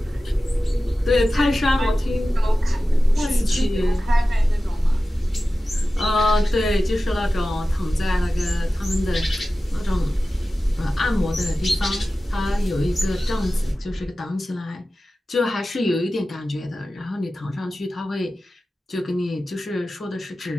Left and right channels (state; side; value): normal; both; correlation 0.95